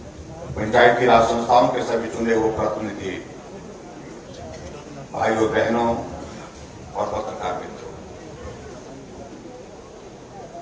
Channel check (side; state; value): both; identical; correlation 1.00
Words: पंचायती राज संस्थाओं के सभी चुने हुए प्रतिनिधि, भाइयों बहनों और पत्रकार मित्रों,